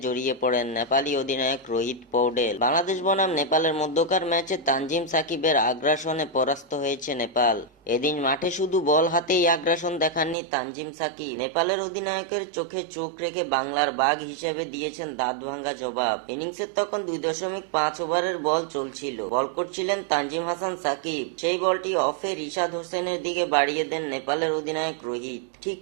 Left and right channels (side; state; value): left; drops out; at 10.4 s